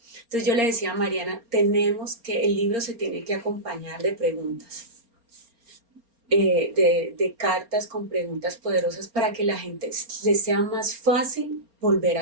Entonces yo le decía a Mariana, el libro se tiene que acompañar de preguntas, de cartas con preguntas poderosas para que la gente les sea más fácil volver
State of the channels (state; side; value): late; left; 4.3 ms